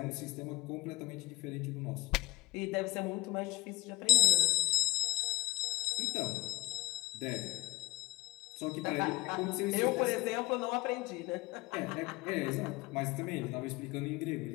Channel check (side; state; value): right; quieter; 21.2 dB